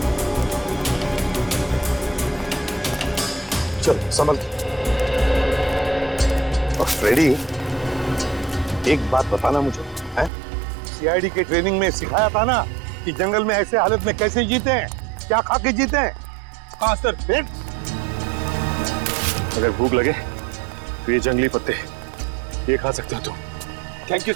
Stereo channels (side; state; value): left; drops out; at 10.3 s